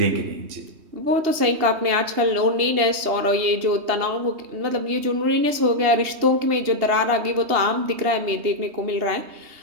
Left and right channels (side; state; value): left; late; 3.2 ms